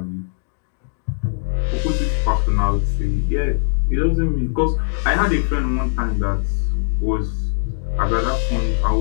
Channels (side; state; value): right; silent; digital silence